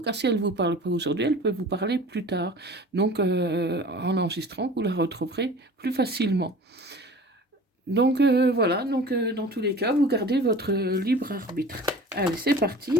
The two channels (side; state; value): both; normal; correlation 0.41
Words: si elle ne vous parle pas aujourd'hui, elle peut vous parler plus tard. Donc en enregistrant, vous la retrouverez plus facilement. Donc voilà, donc dans tous les cas, vous gardez votre libre arbitre. Allez, c'est